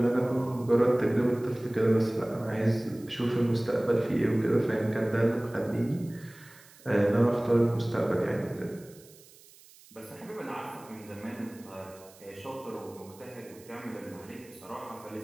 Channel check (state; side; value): noise; right; hiss, 24 dB below the sound